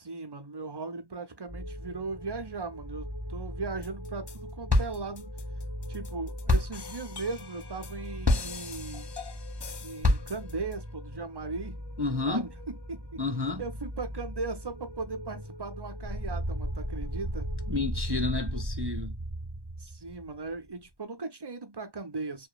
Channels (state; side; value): late; left; 1.1 ms